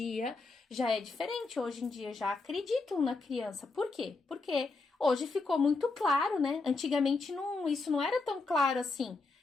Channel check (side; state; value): right; quieter; 3.8 dB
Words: já é diferente. Hoje em dia já acreditam na criança. Por quê? Porque hoje ficou muito claro, né? Antigamente isso não era tão claro assim.